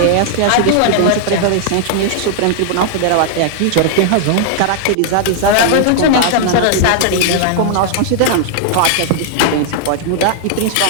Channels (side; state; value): both; different; correlation -0.01